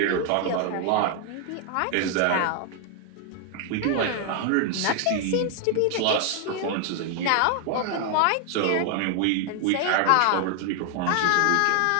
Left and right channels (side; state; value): both; different; correlation 0.00